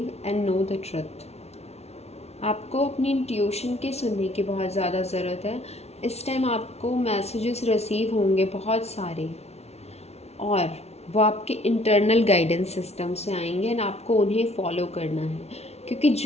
and know the truth. आपको अपनी इंट्यूशन के सुनने की बहुत ज़्यादा ज़रूरत है। इस टाइम आपको मैसेजेस रिसीव होंगे बहुत सारे, और वो आपके इंटरनल गाइडेंस सिस्टम से आएंगे एंड आपको उन्हें फॉलो करना है, क्योंकि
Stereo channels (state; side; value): late; right; 0.31 ms